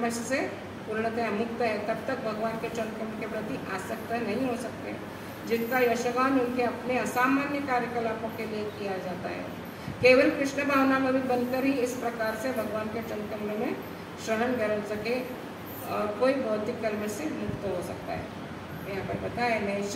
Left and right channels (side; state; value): both; identical; correlation 1.00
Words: से पूर्णतः मुक्त है। तब तक भगवान के चरण कमल के प्रति आसक्त नहीं हो सकते, जिनका यशगान उनके अपने असामान्य कार्यकलापों के लिए किया जाता है। केवल कृष्ण भावना में भी बनकर ही इस प्रकार से भगवान के चरण कमलों में शरण कर सके और कोई भौतिक कलमश से मुक्त हो सकता है। यहाँ पर बताया